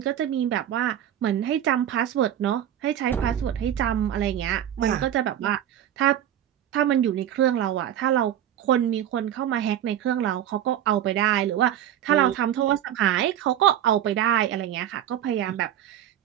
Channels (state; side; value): quieter; left; 10.8 dB